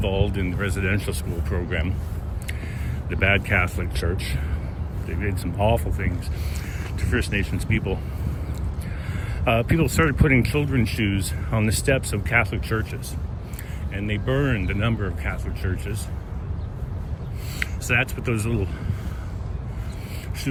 in the residential school program, the bad Catholic Church, they did some awful things to First Nations people. People started putting children's shoes on the steps of Catholic churches, and they burned a number of Catholic churches. So that's what those little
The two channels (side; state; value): both; identical; correlation 1.00